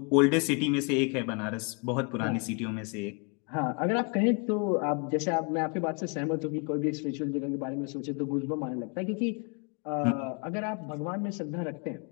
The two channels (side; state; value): right; quieter; 34.7 dB